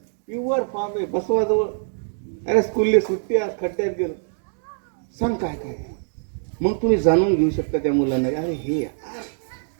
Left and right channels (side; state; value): left; silent; digital silence